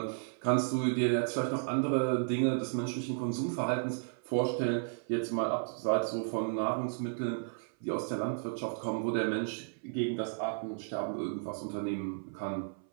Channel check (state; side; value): silent; left; 55 dB below the other